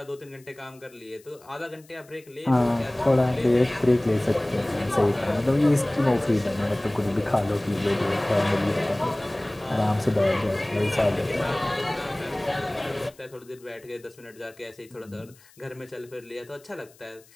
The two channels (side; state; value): left; noise; hiss, 27 dB below the sound